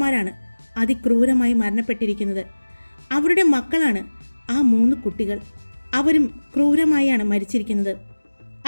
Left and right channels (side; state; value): both; inverted; correlation -1.00